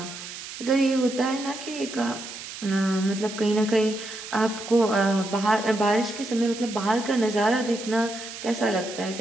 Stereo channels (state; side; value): noise; right; hiss, 11 dB below the sound